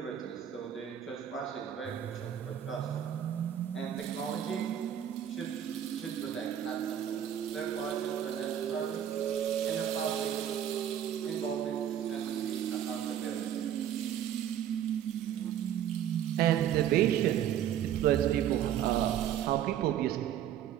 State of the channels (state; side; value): quieter; left; 10.2 dB